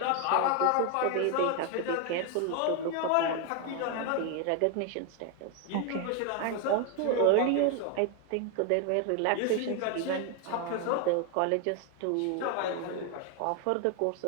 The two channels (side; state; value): both; different; correlation 0.01